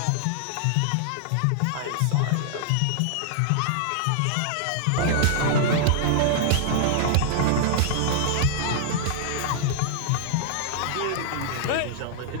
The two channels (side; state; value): both; different; correlation -0.01